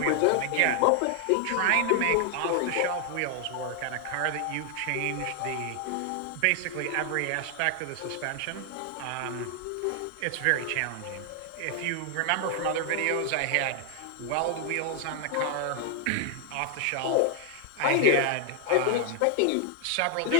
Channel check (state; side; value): different; both; correlation 0.00